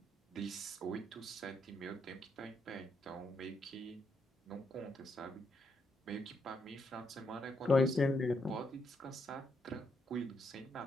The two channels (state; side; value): normal; both; correlation 0.77